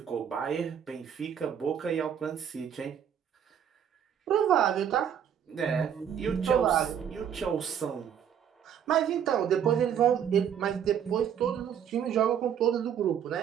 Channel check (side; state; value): left; quieter; 8.7 dB